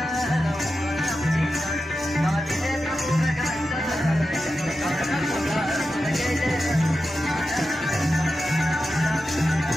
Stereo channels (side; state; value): both; normal; correlation 0.91